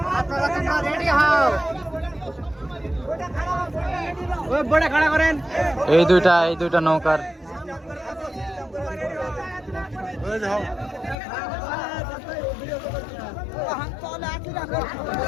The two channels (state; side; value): drops out; right; at 11.2 s